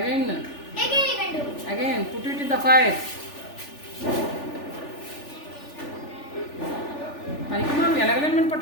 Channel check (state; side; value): late; right; 3.4 ms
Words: Again you can do. Again put it in the fire పనికి మనం ఎలగలేమని